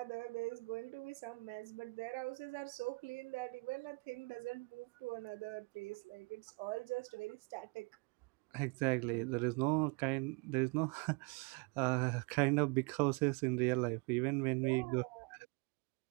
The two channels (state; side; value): quieter; left; 29.3 dB